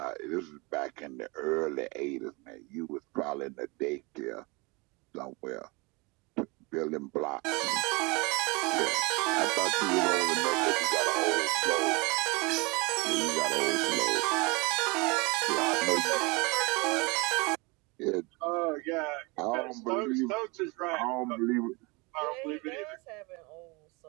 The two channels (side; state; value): left; quieter; 27.2 dB